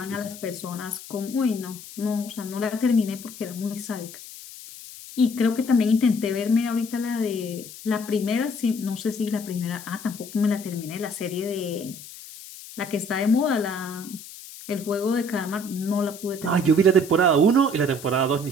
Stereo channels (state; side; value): noise; left; hiss, 15 dB below the sound